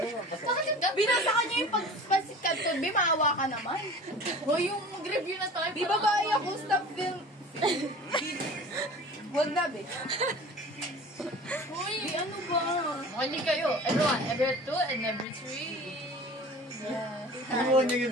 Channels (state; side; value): normal; both; correlation 0.41